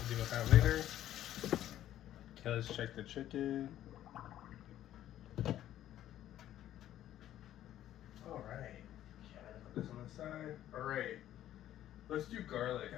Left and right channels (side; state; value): right; quieter; 12.4 dB